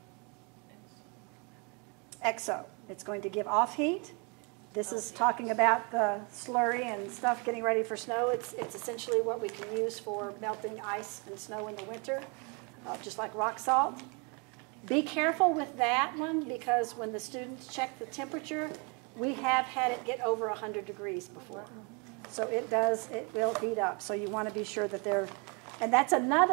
Exo. It's going to give off heat. This is talking about the slurry and stuff getting ready for snow. It's essentially what we can use for melting ice and snow in the winter, just like rock salt. Be careful with that one because when the students check the temperature, we have had it get over 100 degrees before. So it will heat up. So you want to be sure that and that's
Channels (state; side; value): quieter; left; 32.9 dB